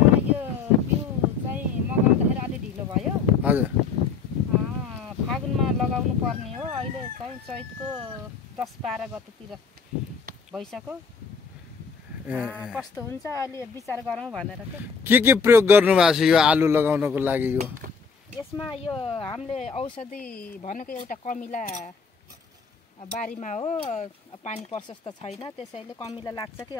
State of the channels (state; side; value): quieter; right; 5.5 dB